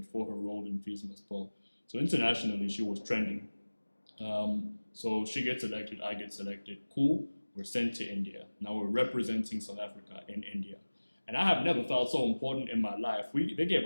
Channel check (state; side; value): inverted; both; correlation -1.00